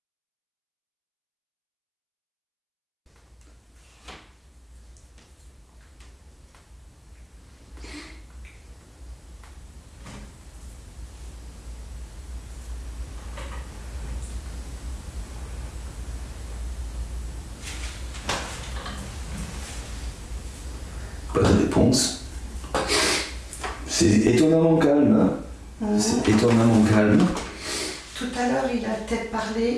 Pas de réponse. C'est étonnamment calme. Hein. C'est étonnamment calme. Tout à l'heure, il a peut-être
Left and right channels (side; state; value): both; identical; correlation 1.00